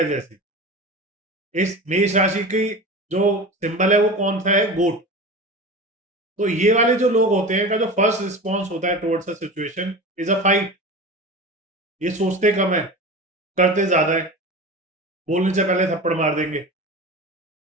जैसी। इस मेष राशि की जो सिंबल है वो कौन सा है, गोट। तो ये वाले जो लोग होते हैं, का जो फर्स्ट रिस्पॉन्स होता है towards a situation is a fight. ये सोचते कम है, करते ज्यादा है, बोलने से पहले थप्पड़ मार देंगे।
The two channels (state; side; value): normal; both; correlation 0.31